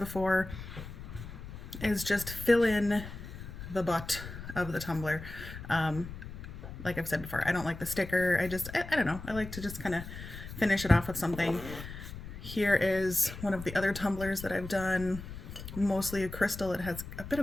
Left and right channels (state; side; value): noise; left; rumble, 11 dB below the sound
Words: is just fill in the butt of the tumbler. Like I've said before, I don't like the sticker. I don't know. I like to just kind of finish it off with something. Here is one of the other tumblers that I've done, mostly a crystal. It has a bit